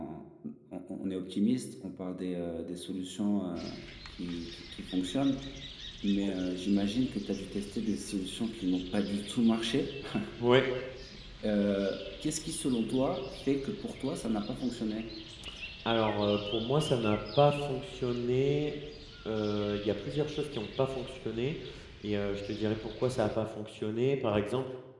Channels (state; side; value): identical; both; correlation 1.00